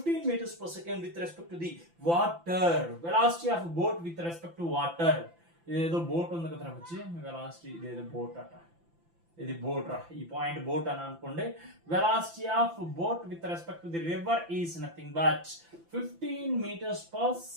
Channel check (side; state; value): left; late; 5.9 ms